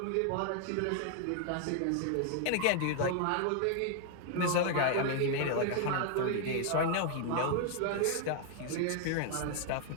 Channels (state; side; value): different; both; correlation 0.00